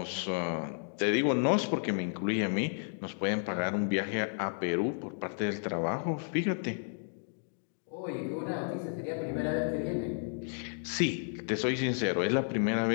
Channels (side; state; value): right; silent; digital silence